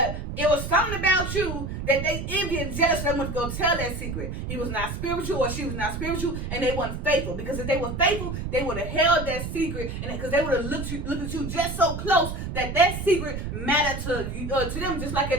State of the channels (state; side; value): noise; right; rumble, 5 dB below the sound